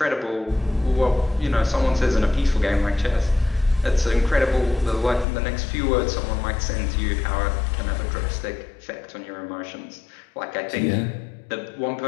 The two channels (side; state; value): right; drops out; at 5.2 s